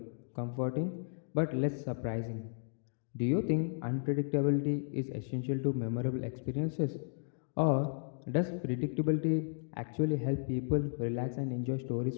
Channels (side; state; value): right; silent; digital silence